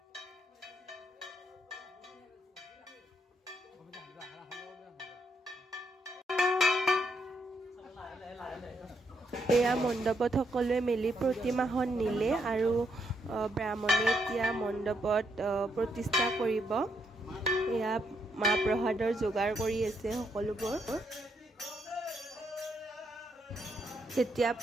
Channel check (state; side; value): normal; both; correlation 0.77